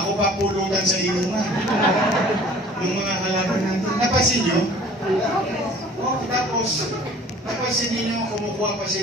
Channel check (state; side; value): normal; both; correlation 0.49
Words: papulutan sa inuman. Yung mga halaman natin. Napansin nyo? Oh, tapos, napansin niyo kumukuha pa